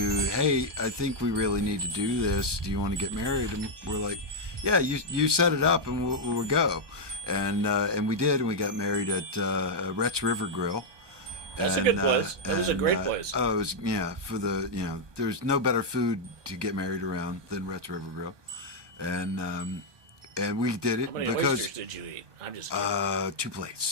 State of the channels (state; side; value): late; left; 1.2 ms